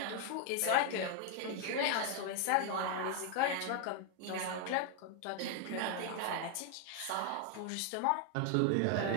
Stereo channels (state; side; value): different; both; correlation 0.00